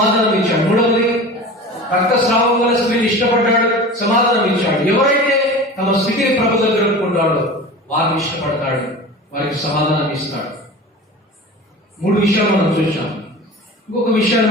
ఇచ్చాడు. మూడవది, రక్తస్రావం గల స్త్రీని ఇష్టపడ్డాడు, సమాధానం ఇచ్చాడు. ఎవరైతే తమ స్థితిని ప్రభు దగ్గర ఒప్పుకుంటాడో వారిని ఇష్టపడతాడు, వారికి సమాధానం ఇస్తాడు. 3 విషయాలు మనం చూసాం. ఇంకొక విషయాన్ని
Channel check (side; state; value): both; normal; correlation 0.35